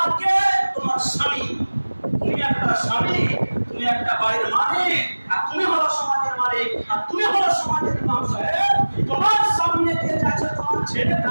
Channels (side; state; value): both; inverted; correlation -1.00